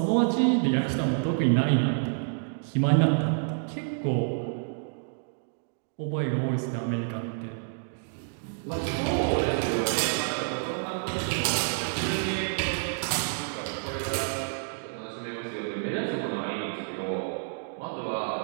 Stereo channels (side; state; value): left; silent; digital silence